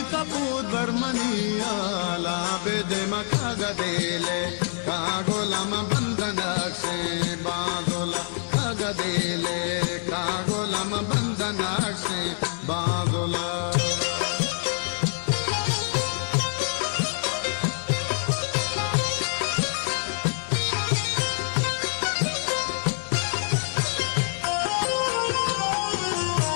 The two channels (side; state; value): right; silent; digital silence